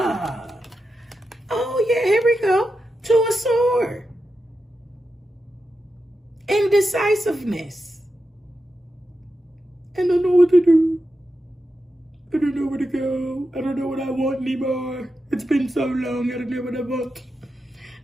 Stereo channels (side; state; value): both; normal; correlation 0.89